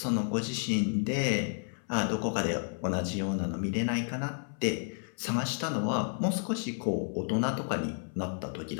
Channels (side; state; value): right; silent; 57 dB below the other